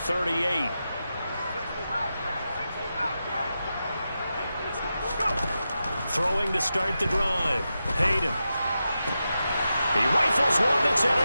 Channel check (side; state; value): both; inverted; correlation -0.90